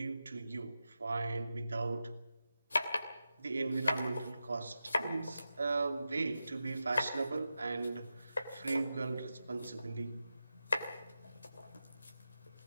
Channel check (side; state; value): both; inverted; correlation -0.90